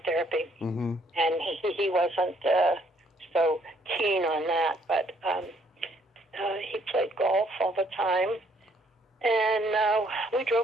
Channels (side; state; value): both; normal; correlation 0.66